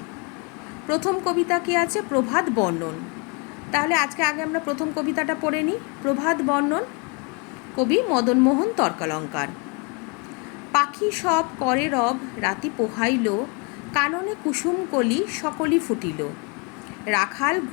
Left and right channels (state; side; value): quieter; right; 32.2 dB